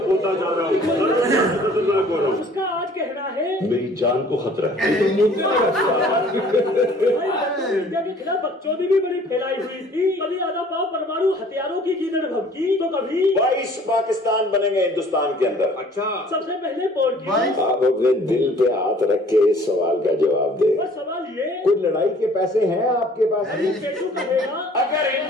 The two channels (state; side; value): normal; both; correlation 0.53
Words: होता जा रहा हूँ। उसका आज कहना है मेरी जान को खतरा है। इंडिया के खिलाफ बकचोदी भी बड़ी फैलाई हुई थी। कभी आधा पाव परमाणु हथियारों की गीदड़ भभकी तो कभी 22 पाकिस्तान बनेंगे हिंदुस्तान के अंदर। अच्छा, सबसे पहले पोर्ट आप अपने दिल पे हाथ रख के इस सवाल का जवाब दे। और सवाल ये, कोई लड़ाई के पैसे हैं आपके पास? पेटू कहेगा अगर